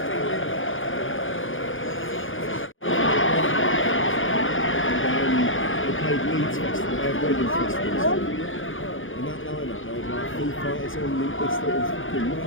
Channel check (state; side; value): late; right; 0.58 ms